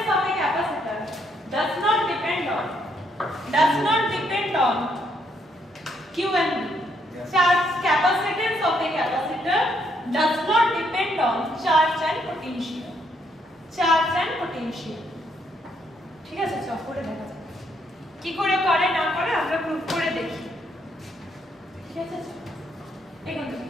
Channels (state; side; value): normal; both; correlation 0.73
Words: of a capacitor does not depend on Q and V. Charge capacitance of a capacitor does not depend on charge and potential. ঠিক আছে, চল করে দেখা যাক কি করে করে না করে, আমরা প্রুফ করে দেখি। ঠিক আছে, এখান থেকে